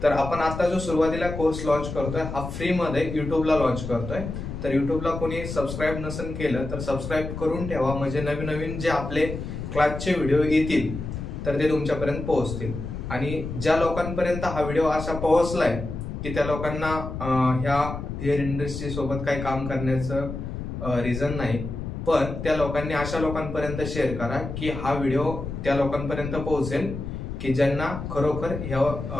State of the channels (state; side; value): noise; left; rumble, 7 dB below the sound